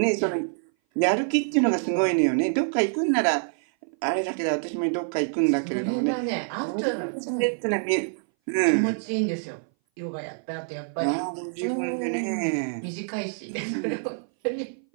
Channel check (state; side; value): silent; left; 58 dB below the other